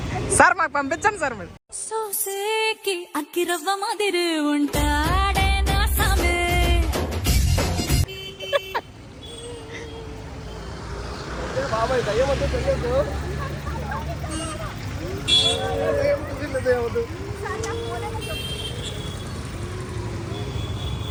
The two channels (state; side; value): identical; both; correlation 1.00